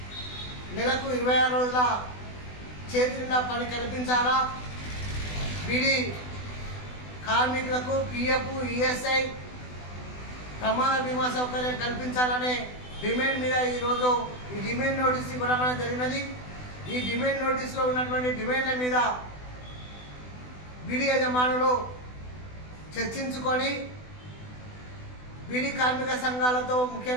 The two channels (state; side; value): late; right; 20 ms